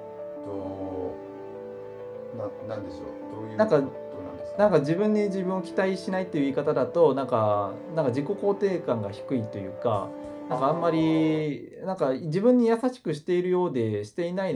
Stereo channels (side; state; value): both; identical; correlation 1.00